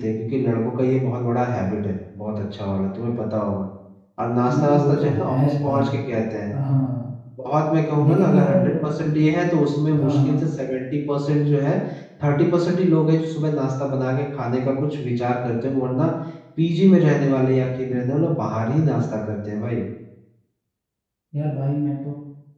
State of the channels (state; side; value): identical; both; correlation 1.00